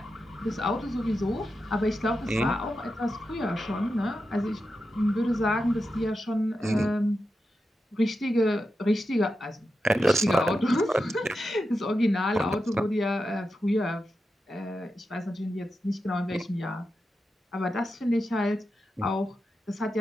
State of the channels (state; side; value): normal; both; correlation 0.89